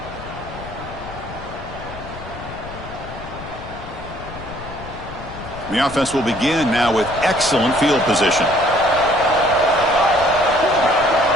The offense will begin now with excellent field position.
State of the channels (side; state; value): left; noise; rumble, 13 dB below the sound